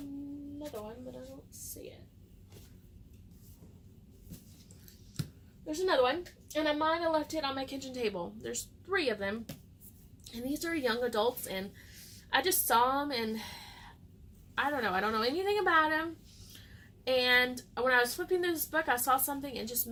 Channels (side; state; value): both; identical; correlation 1.00